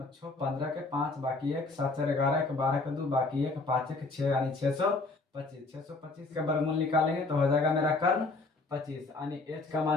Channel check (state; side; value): quieter; right; 3.5 dB